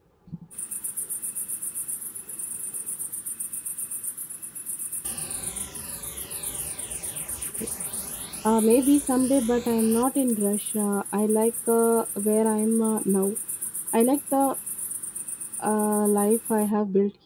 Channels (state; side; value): identical; both; correlation 1.00